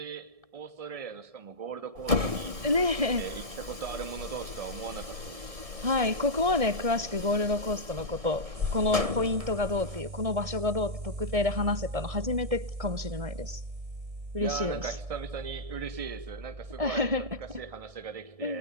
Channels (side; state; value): left; late; 1.7 ms